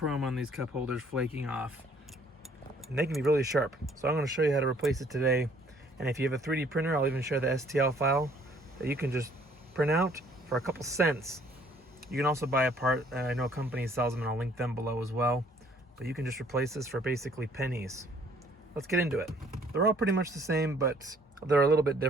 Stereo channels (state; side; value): normal; both; correlation 0.61